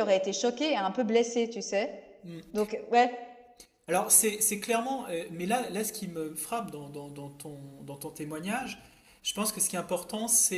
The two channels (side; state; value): both; identical; correlation 1.00